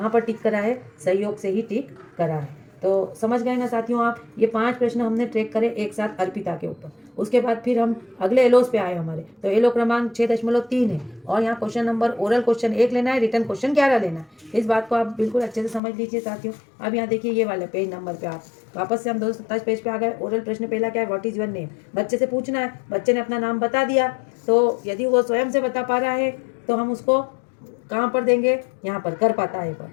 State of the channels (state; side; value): drops out; right; at 15.8 s